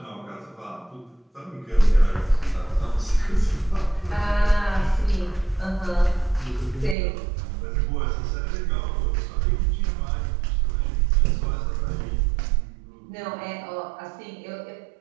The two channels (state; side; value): drops out; left; at 7.0 s